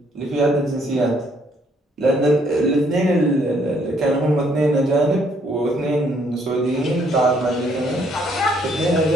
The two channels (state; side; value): normal; both; correlation 0.67